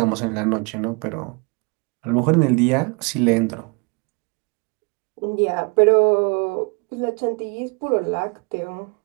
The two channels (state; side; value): quieter; left; 32.0 dB